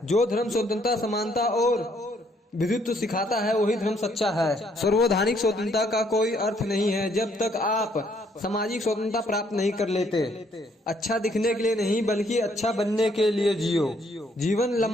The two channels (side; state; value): both; normal; correlation 0.68